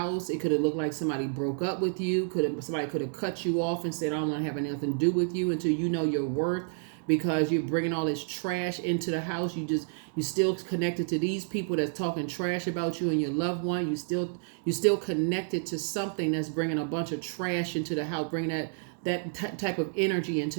It could have looked like somebody broke up with you. Somebody could have cut you off and said, I don't want to have anything to do with you until you know your worth. Because you're bringing all this trash into the house, you still connected to these people that's talking trash about you and your loved one. You still connected to something that's bringing a bunch of trash into the house, bringing that type of energy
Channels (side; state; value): left; silent; digital silence